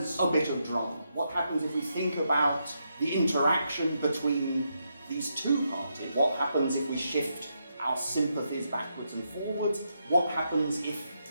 a bit of drama, what happens if we think about the interaction between these two parties? What happens if we shift our sympathies backwards and forwards? What happens if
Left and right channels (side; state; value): both; inverted; correlation -0.81